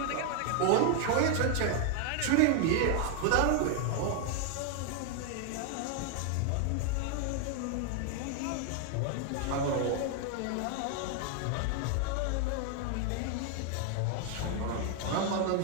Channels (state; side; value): different; both; correlation 0.00